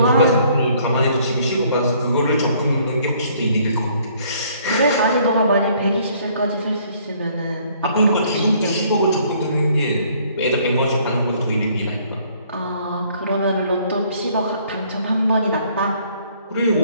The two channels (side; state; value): both; inverted; correlation -0.62